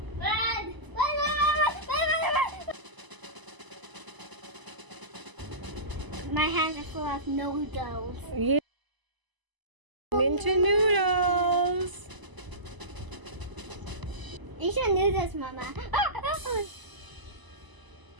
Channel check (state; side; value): late; left; 1.0 ms